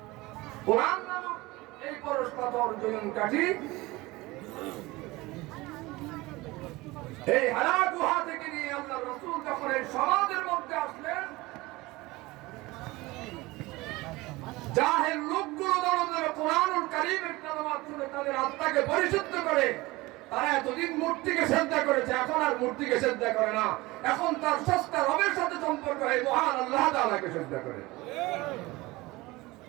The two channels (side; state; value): left; quieter; 21.0 dB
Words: कुरान नामक এই পরশ পাথর জয়ন কাঠি এই হারা গুহা থেকে নিয়ে আল্লাহর রাসূল যখন এই সমাজের মধ্যে আসলেন, জাহেল লোকগুলো যখন কোরআনুল কারীমের তেলাওয়াত শুনে তাদের আত্মাকে পরিশুদ্ধ করে, তারা এতদিন মূর্তিকে সিজদা করেছে, এখন আর মূর্তিকে সিজদা করে না, এখন তার স্রষ্টা রবের সাথে সম্পর্ক হয়, মহান আল্লাহ তাআলাকে সিজদা করে।